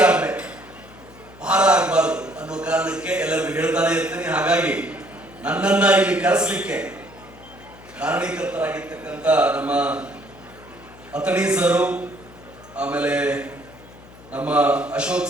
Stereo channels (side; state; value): left; noise; hum, 21 dB below the sound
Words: ಆಗ್ಬೇಕು, ಭಾರ ಆಗಬಾರದು ಅನ್ನೋ ಕಾರಣಕ್ಕೆ ಎಲ್ಲರಿಗೂ ಹೇಳ್ತಾನೆ ಇರ್ತೀನಿ. ಹಾಗಾಗಿ ನನ್ನನ್ನ ಇಲ್ಲಿ ಕರೆಸಲಿಕ್ಕೆ ಕಾರಣೀಕರ್ತರಾಗಿರ್ತಕ್ಕಂಥ ನಮ್ಮ ಅತಣಿ ಸರು, ಆಮೇಲೆ ನಮ್ಮ Ashok